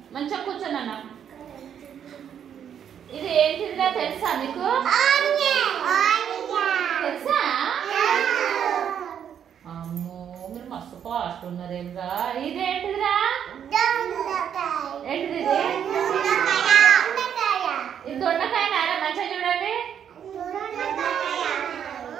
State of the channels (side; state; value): left; quieter; 8.7 dB